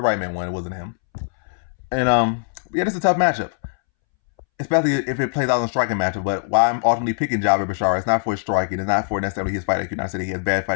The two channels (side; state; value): right; silent; 64 dB below the other